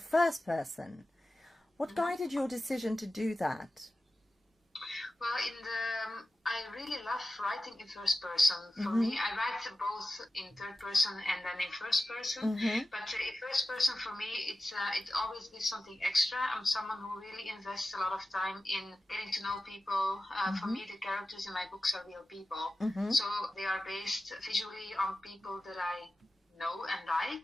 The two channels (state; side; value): normal; both; correlation 0.94